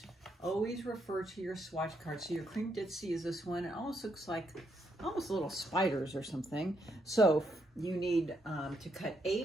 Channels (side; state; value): both; normal; correlation 0.77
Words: always refer to your swatch card. So your cream ditzy is this one. It almost looks like little spiders or something. So you need to cut